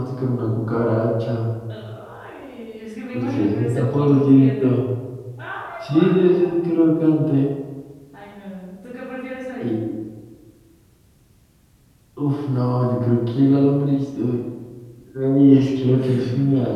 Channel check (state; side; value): identical; both; correlation 1.00